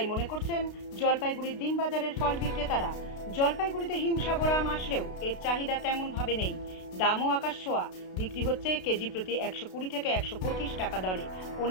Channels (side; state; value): right; late; 32 ms